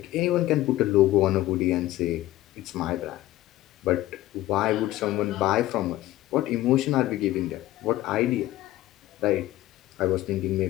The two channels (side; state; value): right; quieter; 15.6 dB